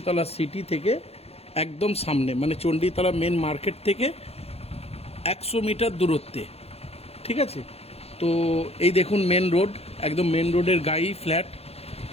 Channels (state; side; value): late; right; 0.29 ms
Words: সিটি থেকে একদম সামনে, মানে চণ্ডীতলা মেন মার্কেট থেকে 100 মিটার দূরত্বে, ঠিক আছে। তো এই দেখুন মেন রোড, একদম মেন রোডের গায়েই ফ্ল্যাট।